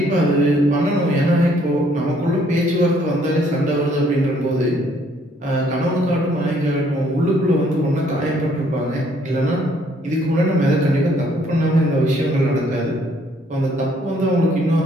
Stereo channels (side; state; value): both; normal; correlation 0.65